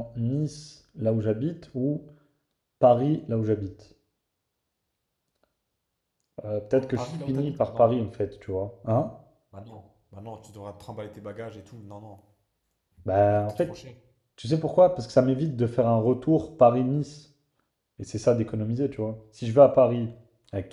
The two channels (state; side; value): identical; both; correlation 1.00